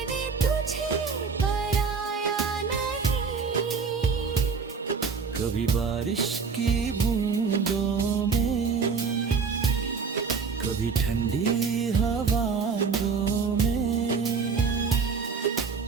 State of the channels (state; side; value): quieter; left; 5.3 dB